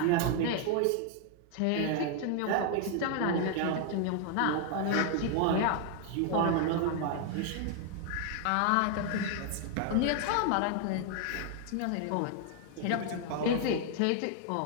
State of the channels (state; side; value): different; both; correlation 0.00